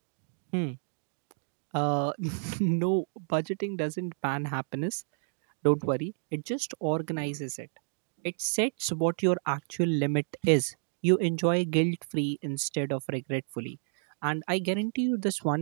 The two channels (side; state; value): left; silent; digital silence